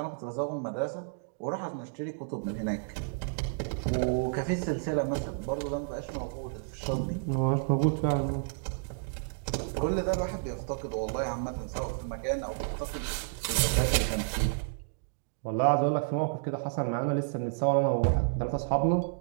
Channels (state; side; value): silent; left; digital silence